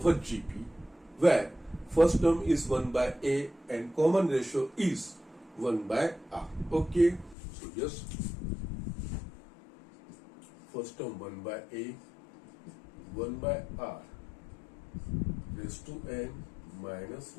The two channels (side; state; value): right; drops out; at 7.4 s